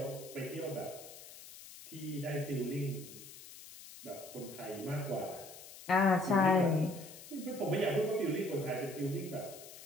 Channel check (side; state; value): left; noise; hiss, 16 dB below the sound